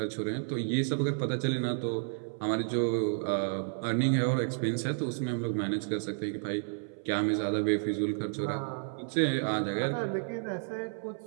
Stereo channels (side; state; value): left; silent; 57 dB below the other